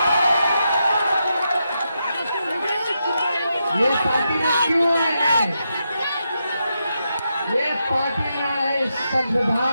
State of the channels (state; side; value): inverted; both; correlation -0.85